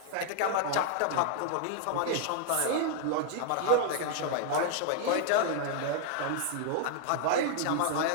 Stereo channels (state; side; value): different; both; correlation 0.00